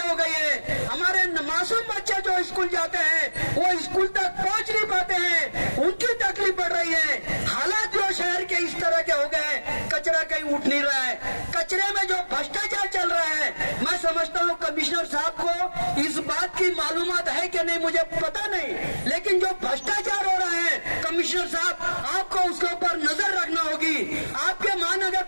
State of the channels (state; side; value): inverted; both; correlation -1.00